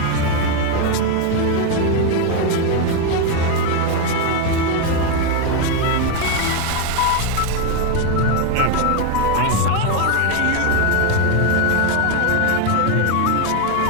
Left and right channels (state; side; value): different; both; correlation 0.01